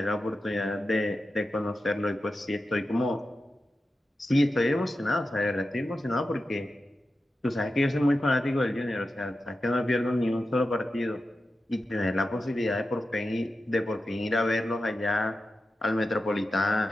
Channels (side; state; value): both; normal; correlation 0.91